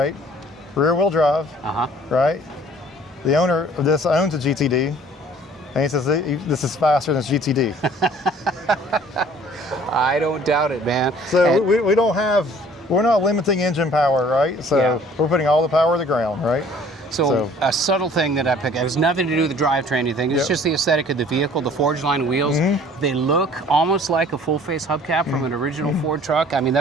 Rear-wheel drive. Right. The owner of this owns a GTD, and he says this is faster than GTD. I don't doubt it, man. So we're not limiting engine power, right? So we're putting all the power to the ground, right? So a subtle thing that I picked, it has nothing to do with the drivetrain or anything. It's just the aesthetic of the vehicle, the Forge line wheels. They look almost like a full-face hubcap from an original Ford truck. I mean,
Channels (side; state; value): both; normal; correlation 0.53